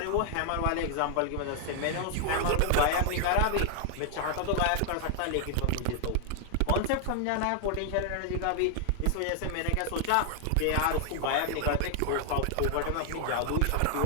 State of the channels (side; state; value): both; different; correlation 0.00